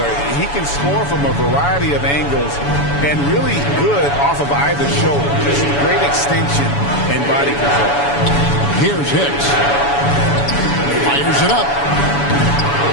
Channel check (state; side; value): late; right; 7.0 ms